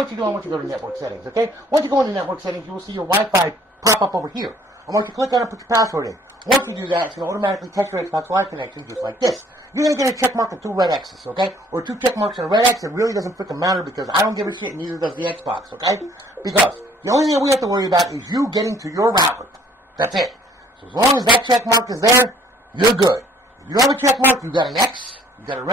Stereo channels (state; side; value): normal; both; correlation 0.59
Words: you to do, I want you to go to network settings, okay? Once you go into network settings, you will see your Wi-Fi pop up over here. I want you to click on it and put your password in. Once you do that, it's going to automatically test your Xbox Live connection just like this. You're going to get a check mark and 2 red X's, okay? Or 2 check marks and a red X. It really doesn't freaking matter because I don't give a shit and neither does the Xbox, okay? Because the only thing that we have to worry about is you getting to your router. That's it. So as long as that check mark is there, you're good. If you don't have a check mark, you got an X, you got a